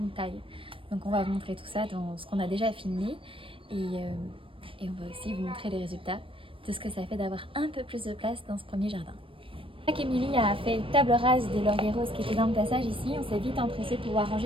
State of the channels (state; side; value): late; left; 0.25 ms